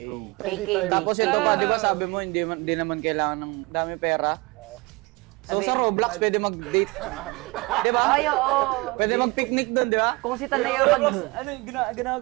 KK. Tapos ito pa, di ba sabi mo, hindi naman kailangan ng dami pera. So Sabi- sa Roblox, pwede mag-date. Di ba? Ay, oo. Pwede mag-picnic doon, di ba? Kung si Taneo mag... Ano yung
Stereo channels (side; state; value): left; quieter; 24.9 dB